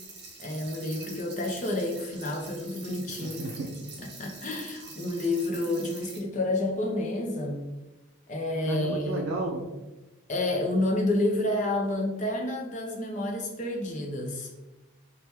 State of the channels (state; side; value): normal; both; correlation 0.47